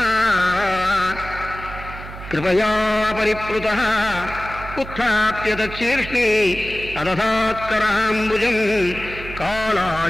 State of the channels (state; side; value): noise; right; hum, 12 dB below the sound